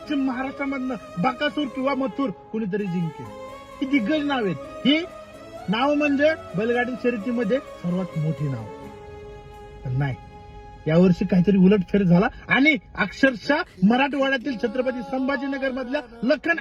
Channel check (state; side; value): identical; both; correlation 1.00